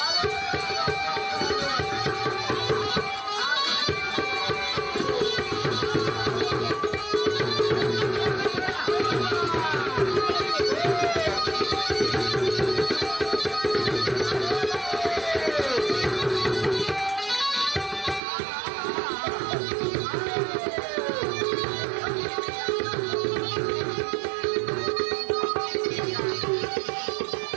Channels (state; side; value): drops out; left; at 18.2 s